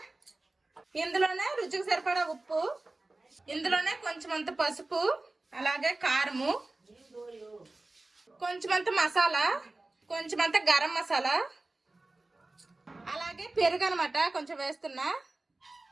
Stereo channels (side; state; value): left; quieter; 3.0 dB